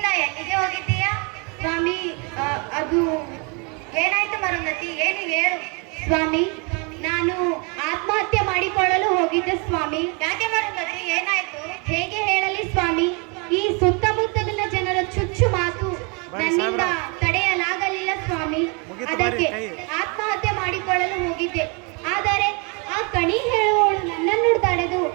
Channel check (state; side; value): quieter; left; 32.8 dB